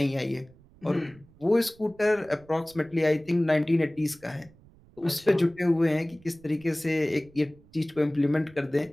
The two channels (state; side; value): noise; right; rumble, 26 dB below the sound